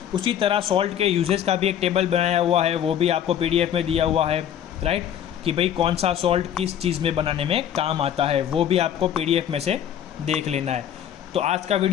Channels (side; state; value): right; quieter; 9.9 dB